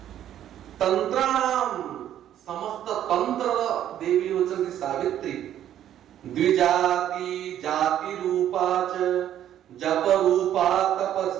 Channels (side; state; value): left; quieter; 11.1 dB